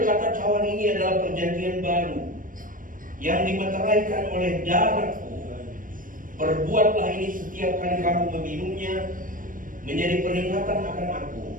cawan ini adalah perjanjian baru yang dimeteraikan oleh darahku. Perbuatlah ini setiap kali kamu meminumnya menjadi peringatan akan aku.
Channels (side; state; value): left; late; 0.39 ms